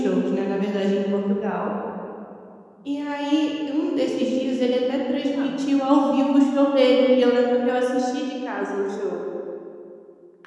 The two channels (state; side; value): identical; both; correlation 1.00